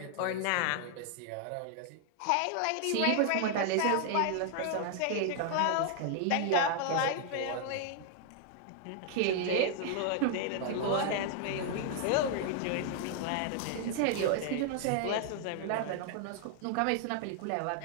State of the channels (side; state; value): both; different; correlation 0.00